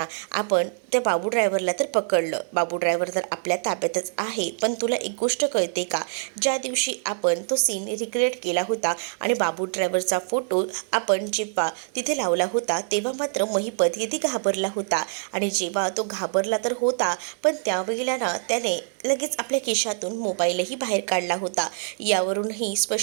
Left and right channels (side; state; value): left; silent; 62 dB below the other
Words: आपण त्या बाबू ड्रायव्हरला तर पकडलं, बाबू ड्रायव्हर तर आपल्या ताब्यातच आहे. पण तुला एक गोष्ट कळते का, ज्या दिवशी आपण तो सीन रिक्रिएट केला होता आणि बाबू ड्रायव्हरचा फोटो आपण जेव्हा तिथे लावला होता तेव्हा मात्र महिपत किती घाबरला होता. आणि जेव्हा तो घाबरला तर होता, पण त्यावेळेला ना त्याने लगेच आपल्या खिशातून मोबाईलही बाहेर काढला होता. यावरूनही